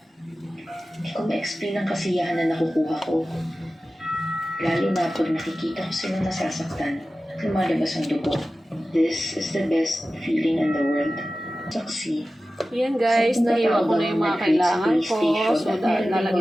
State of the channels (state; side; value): normal; both; correlation 0.95